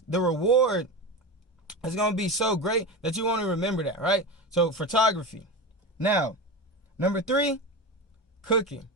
the reward. It's going to be so great that you want to remember that, right? So photography. Now, number 3, cooking,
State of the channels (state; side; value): normal; both; correlation 0.23